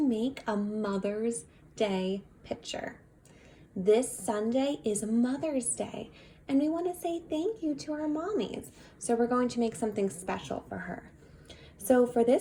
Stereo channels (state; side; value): identical; both; correlation 1.00